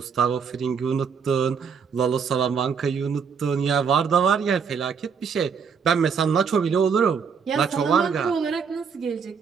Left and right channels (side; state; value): left; quieter; 6.3 dB